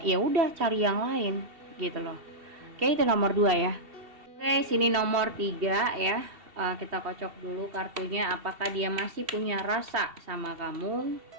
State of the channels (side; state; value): left; late; 2.7 ms